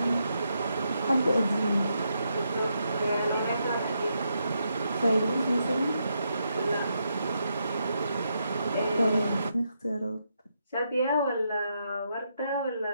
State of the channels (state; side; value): inverted; both; correlation -0.81